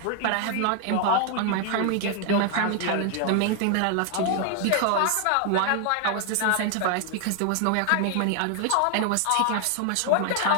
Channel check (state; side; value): different; both; correlation 0.01